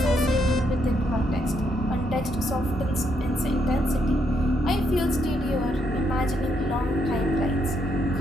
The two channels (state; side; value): normal; both; correlation 0.76